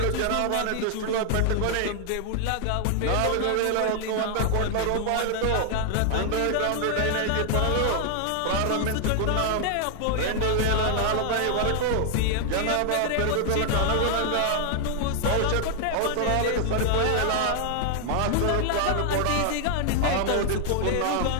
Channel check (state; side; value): different; both; correlation 0.00